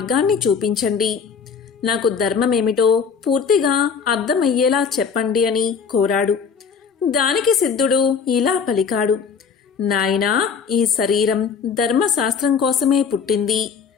చూపించండి. నాకు ధర్మమేమిటో పూర్తిగా అర్థమయ్యేలా చెప్పండి అని కోరాడు. దానికి సిద్ధుడు ఇలా పలికాడు. నాయనా, ఈ శరీరం ధర్మశాస్త్రం కోసమే పుట్టింది.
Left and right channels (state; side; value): quieter; right; 6.2 dB